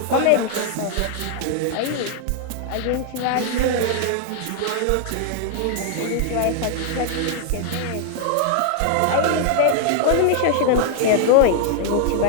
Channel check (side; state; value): both; different; correlation 0.00